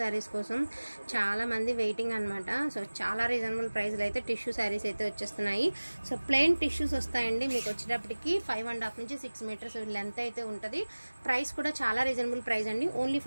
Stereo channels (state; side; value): inverted; both; correlation -1.00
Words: కోసం. చాలా మంది వెయిటింగ్ అనమాట. సో చాలా రీజనబుల్ ప్రైస్లో అయితే టిష్యూ శారీస్ అయితే వచ్చేస్తున్నాయి. సో ప్లెయిన్ టిష్యూస్ వస్తాయండి. మీకు వచ్చేటప్పటికి 5.5 నుంచి 6 మీటర్స్ లెంత్ అయితే ఉంటుంది. ప్రైస్ కూడా చాలా రీజనబుల్ ప్రైస్ అండి. Only